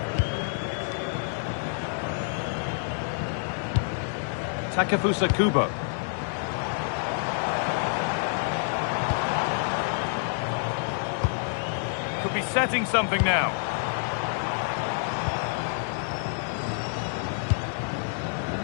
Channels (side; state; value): right; silent; digital silence